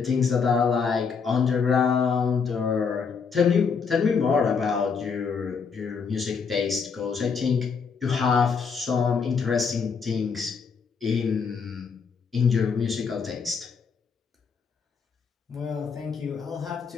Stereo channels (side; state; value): right; quieter; 5.8 dB